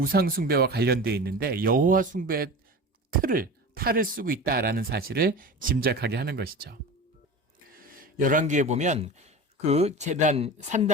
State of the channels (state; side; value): normal; both; correlation 0.32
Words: 숭배와 관련되어 있는데 여호와 숭배의 탈을 쓰고 있다라는 사실을 짐작하게 하는 것이죠. 열왕기에 보면 제단